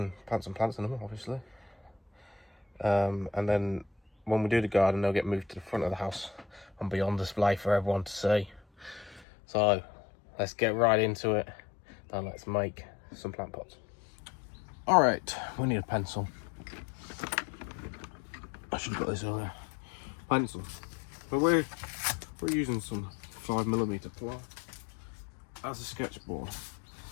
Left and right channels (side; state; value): right; drops out; at 9.2 s